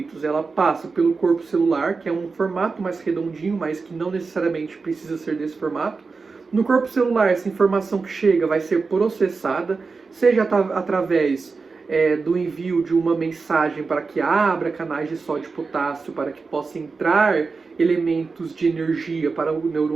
ela passa pelo corpo celular, que é um formato mais redondinho, mas que não necessariamente precisa ser desse formato. No corpo celular, essa informação que chega vai ser processada, seja através do envio de uma mensagem para que abra canais de sódio e potássio para que possa entrar elementos de energia para o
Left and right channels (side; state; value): left; quieter; 4.4 dB